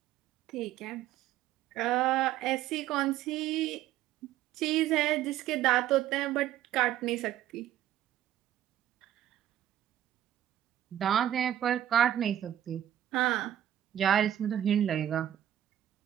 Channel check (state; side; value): quieter; left; 11.9 dB